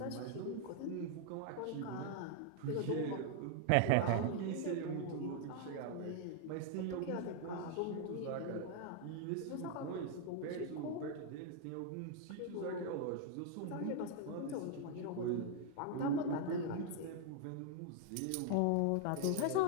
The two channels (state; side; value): different; both; correlation 0.00